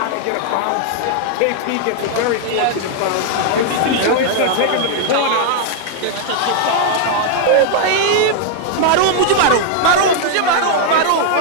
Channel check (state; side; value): different; both; correlation -0.01